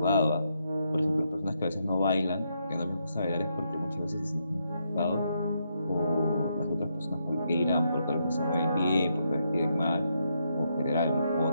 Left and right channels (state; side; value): inverted; both; correlation -0.79